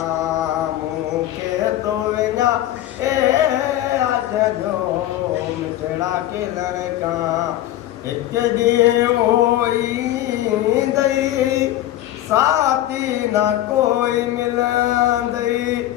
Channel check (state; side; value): quieter; right; 13.8 dB